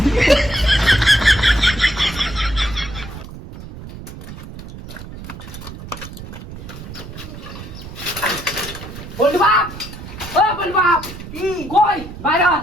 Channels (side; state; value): right; noise; rumble, 12 dB below the sound